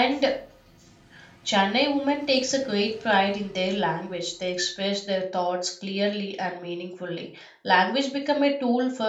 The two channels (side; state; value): both; identical; correlation 1.00